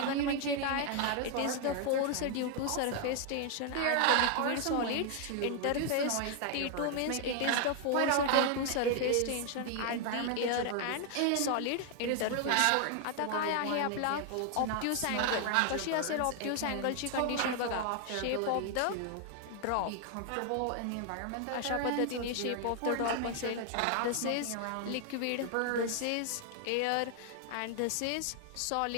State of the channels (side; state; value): both; different; correlation 0.00